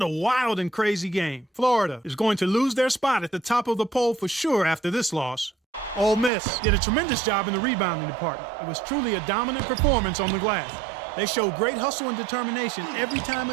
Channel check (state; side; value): drops out; left; at 6.3 s